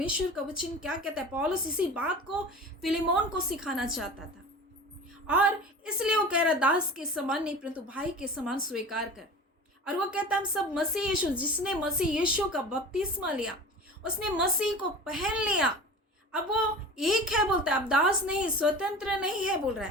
का वचन क्या कहता है? पौलुस इसी बात को फिलेमोन को सिखाना चाहता था, और इसलिए वो कह रहा, दास के समान नहीं परंतु भाई के समान स्वीकार कर। और वो कहता हम सब मसीह यीशु, जिसने मसीह यीशु का बपतिस्मा लिया, उसने मसीह को पहन लिया। अब वो एक है बोलता है, अब दास नहीं, स्वतंत्र नहीं है बोल रहा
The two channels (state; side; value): normal; both; correlation 0.36